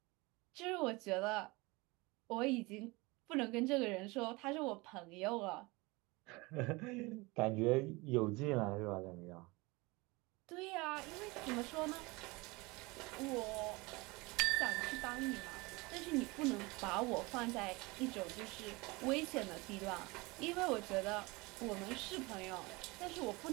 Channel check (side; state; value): left; quieter; 24.2 dB